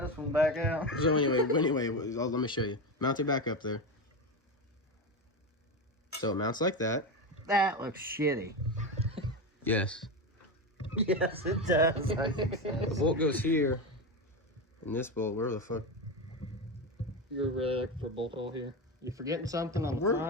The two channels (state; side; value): normal; both; correlation 0.17